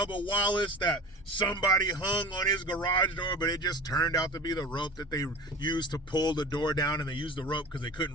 Wallace that somebody hung on his garage door, but it just turned out to be the rope that they used to pull the door down, and they used the rope because they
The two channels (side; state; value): both; normal; correlation 0.34